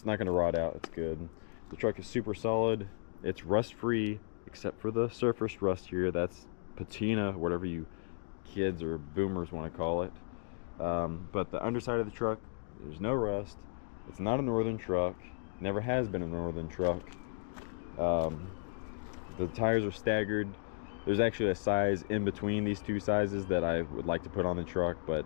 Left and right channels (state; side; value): silent; right; digital silence